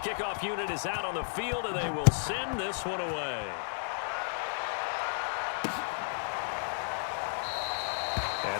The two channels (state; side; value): silent; right; digital silence